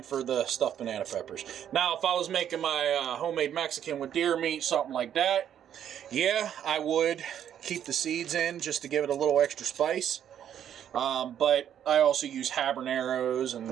for the stuffed banana peppers. Now, if I was making my homemade Mexican with deer meat, something like that, yeah, I would keep the seeds in just to give it a little extra spice. But I also use habaneros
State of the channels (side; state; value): left; quieter; 9.7 dB